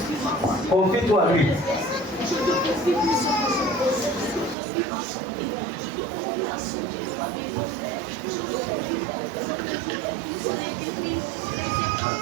Confie-toi à lui.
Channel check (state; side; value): drops out; left; at 4.5 s